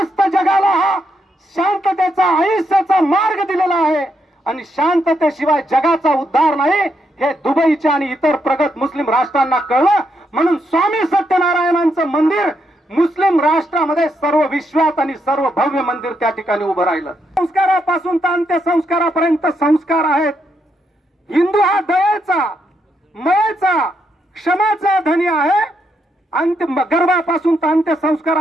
जगाला हा शांततेचा आयुष्याचा मार्ग दिलेला आहे आणि शांततेशिवाय जगाचा उद्धार नाही हे दुबईच्या आणि इतर प्रगत मुस्लिम राष्ट्रांना कळलं. म्हणून स्वामी सत्यनारायणांचं मंदिर मुस्लिम राष्ट्रामध्ये सर्व विश्वात आणि सर्व भव्य मंदिर त्या ठिकाणी उभं राहिलं. संस्कारापासून तर अंत्यसंस्कारापर्यंत संस्कार आहेत. हिंदू हा दयेचा, मयेचा, क्षमाचा धनी आहे. गर्भापासून तर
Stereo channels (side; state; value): both; normal; correlation 0.79